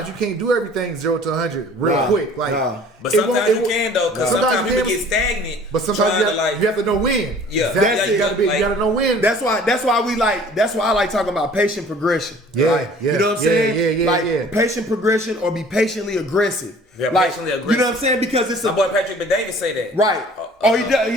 you can't do everything 0 to 100 real quick. Like, but sometimes you can though, because sometimes people get stagnant. But sometimes you have to know when. Yeah, you gotta know when. That's why I like talking about patient progression. You know what I'm saying? Patient progression or be patiently aggressive. Yeah, like, patiently aggressive. You know what I'm saying? Because it's my boy Patrick Bet-David say that. Right. He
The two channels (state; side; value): normal; both; correlation 0.50